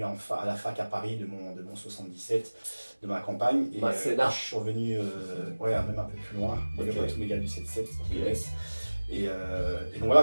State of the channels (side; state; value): both; inverted; correlation -1.00